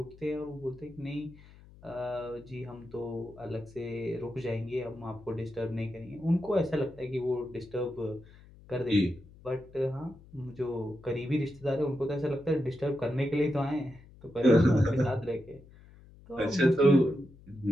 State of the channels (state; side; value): noise; left; hum, 22 dB below the sound